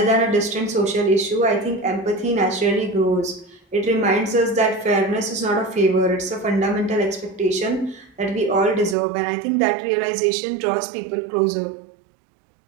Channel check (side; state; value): left; drops out; at 9.0 s